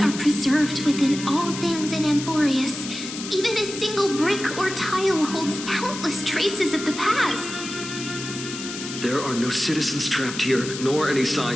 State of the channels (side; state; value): left; noise; hiss, 9 dB below the sound